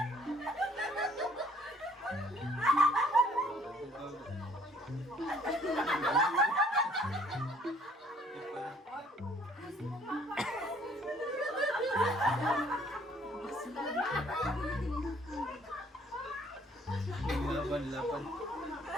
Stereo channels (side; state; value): both; normal; correlation 0.60